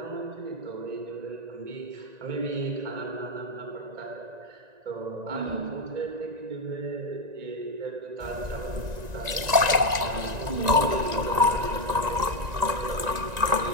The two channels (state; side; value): late; left; 1.9 ms